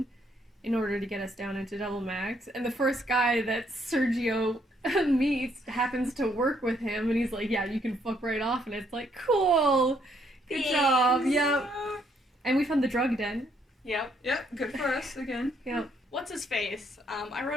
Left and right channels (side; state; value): both; normal; correlation 0.70